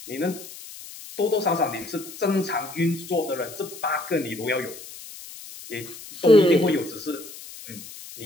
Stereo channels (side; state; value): left; noise; hiss, 15 dB below the sound